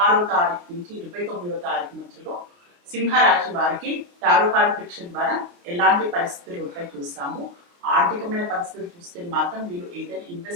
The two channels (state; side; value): late; left; 29 ms